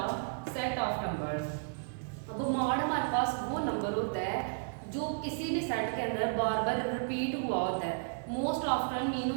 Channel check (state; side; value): silent; left; digital silence